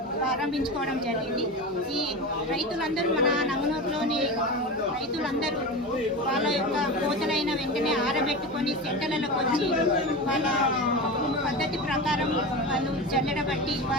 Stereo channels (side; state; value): both; normal; correlation 0.25